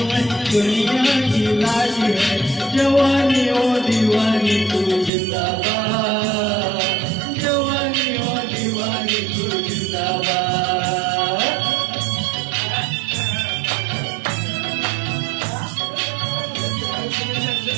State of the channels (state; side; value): drops out; left; at 5.1 s